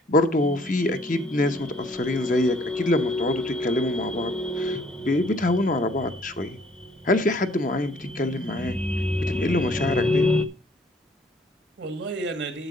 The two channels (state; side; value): normal; both; correlation 0.61